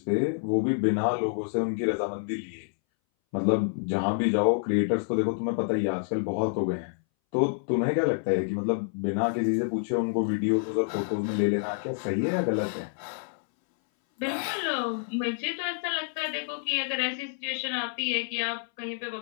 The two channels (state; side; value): silent; right; 59 dB below the other